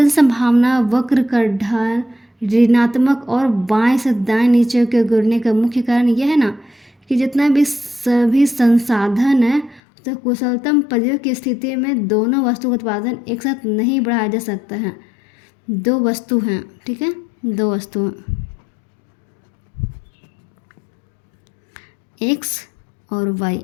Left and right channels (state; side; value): drops out; right; at 9.8 s